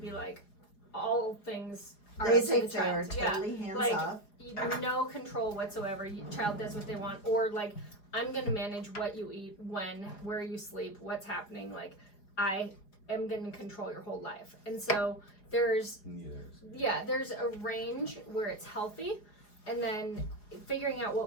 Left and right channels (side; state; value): right; late; 4.8 ms